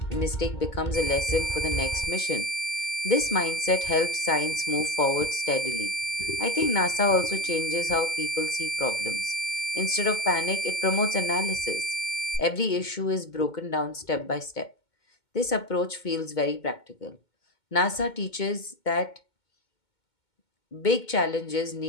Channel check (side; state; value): right; late; 2.2 ms